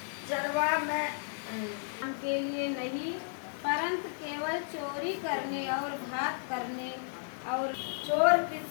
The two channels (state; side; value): silent; right; digital silence